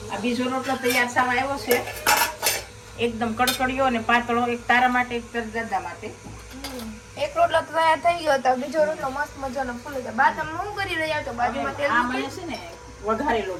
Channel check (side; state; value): both; identical; correlation 1.00